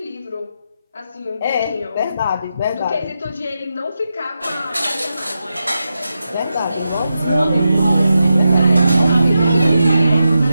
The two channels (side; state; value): both; inverted; correlation -0.88